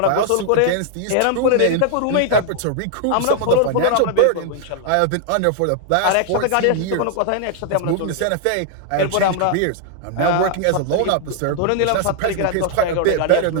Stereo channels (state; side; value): different; both; correlation 0.00